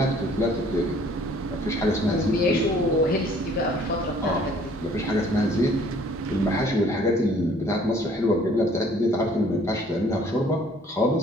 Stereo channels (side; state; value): both; normal; correlation 0.57